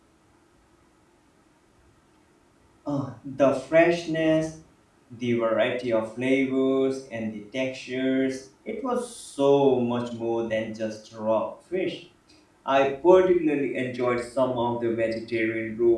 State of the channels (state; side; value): identical; both; correlation 1.00